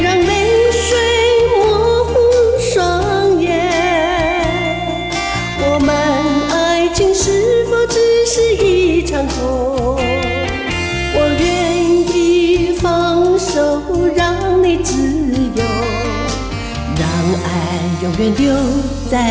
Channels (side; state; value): both; identical; correlation 1.00